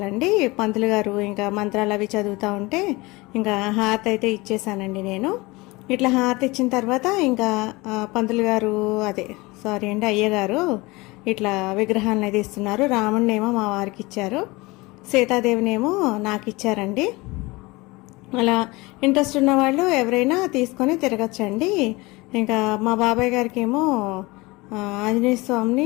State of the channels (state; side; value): quieter; right; 23.0 dB